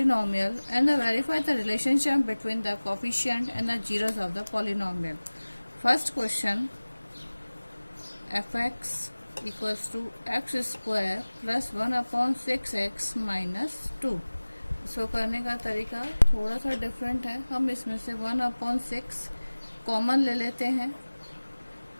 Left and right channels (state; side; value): inverted; both; correlation -1.00